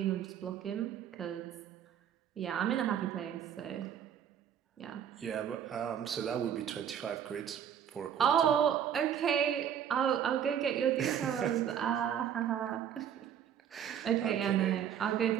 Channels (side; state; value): left; quieter; 9.1 dB